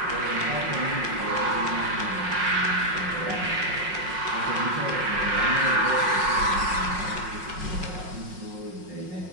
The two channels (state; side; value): late; left; 5.5 ms